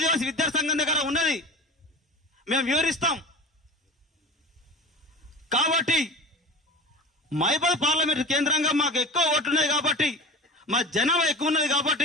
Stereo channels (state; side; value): normal; both; correlation 0.33